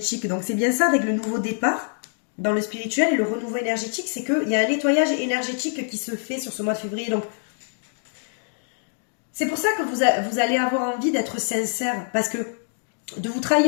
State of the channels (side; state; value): right; silent; digital silence